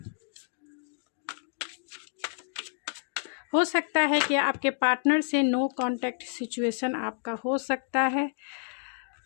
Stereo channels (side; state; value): right; silent; digital silence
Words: हो सकता है कि आपके पार्टनर से नो कांटेक्ट सिचुएशन आपका हो सकता है।